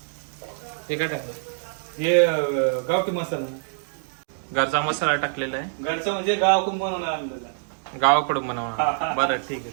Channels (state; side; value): silent; left; digital silence